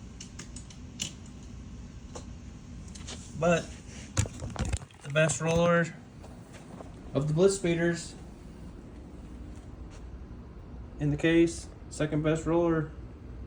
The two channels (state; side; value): identical; both; correlation 1.00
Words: But the best roller of the Blitzspeeders in the case, second best roller.